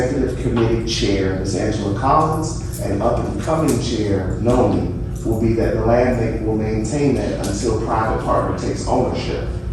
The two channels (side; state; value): both; identical; correlation 1.00